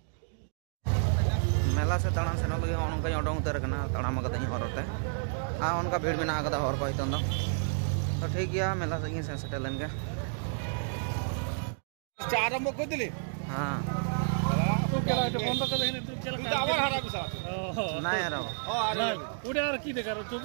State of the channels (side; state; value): left; silent; digital silence